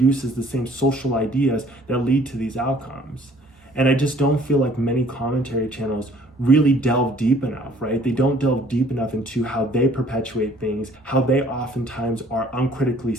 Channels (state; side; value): normal; both; correlation 0.57